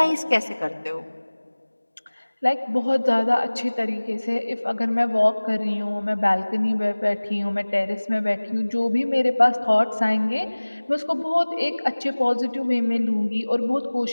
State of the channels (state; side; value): inverted; both; correlation -1.00